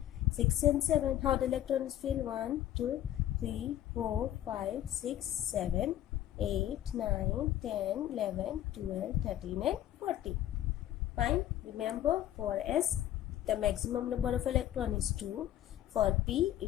6 and 7. How the electron is filled? 1, 2, 3, 4, 5, 6, 7, 8, 9, 10, 11, 12, 13 and 14. Fine. Remember, for S the maximum number of electron is 2. For P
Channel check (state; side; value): quieter; right; 12.4 dB